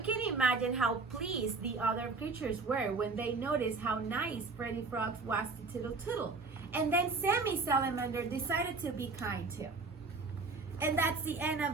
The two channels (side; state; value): left; quieter; 4.0 dB